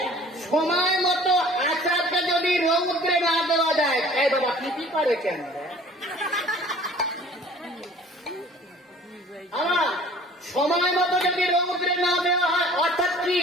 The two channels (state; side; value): normal; both; correlation 0.50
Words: সময় মতো আচারটা যদি রৌদ্রে না দেওয়া যায়, এই বাবা কি করে কেন? আমার সময় মতো যদি রৌদ্রে না দেওয়া হয়, অর্থাৎ কি?